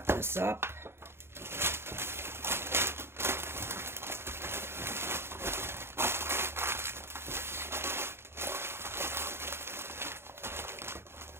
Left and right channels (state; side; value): late; left; 0.12 ms